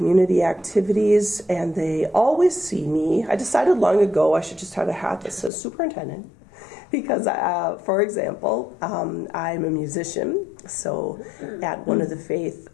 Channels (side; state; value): right; drops out; at 5.5 s